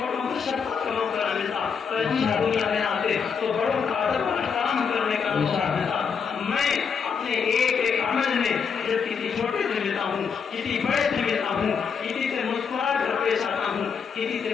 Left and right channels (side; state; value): right; quieter; 6.3 dB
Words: کو شفقت کا موقع نہ ملتا، پیغمبر دنیا میں نہ آتے تو بڑوں کا ادب اور احترام کرنے کا موقع ملتا۔ میں اپنے ایک ایک عمل میں جب کسی چھوٹے سے ملتا ہوں، کسی بڑے سے ملتا ہوں، کسی سے مسکرا کر پیش آتا ہوں، کسی سے